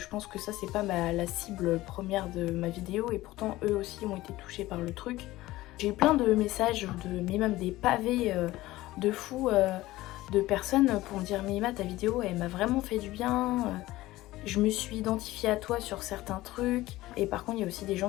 pense que ça c'est pas la cible première de ma vidéo, et pourtant eux aussi ont été touchés par le truc. J'ai eu plein de messages, mais même des pavés de fous de personnes pour me dire mais Emma, ta vidéo elle m'a vraiment fait du bien, je me suis identifiée à toi sur certains trucs. Et par contre il y a aussi des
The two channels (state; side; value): quieter; right; 17.4 dB